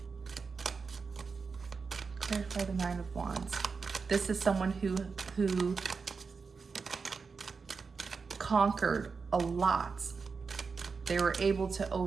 the Nine of Wands. This is someone who conquered a lot. They were able to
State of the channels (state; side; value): quieter; left; 5.0 dB